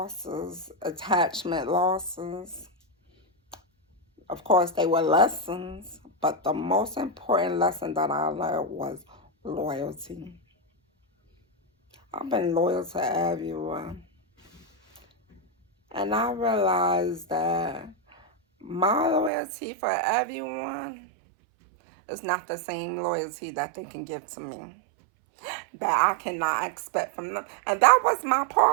attachment losses, of course, they were lessons, but the most important lesson that I learned was loyalty. I've been loyal to everyone. And I realized that my loyalty for everyone is not the same loyalty that they can give to me, that I cannot expect from them. And that was my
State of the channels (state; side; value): drops out; left; at 19.3 s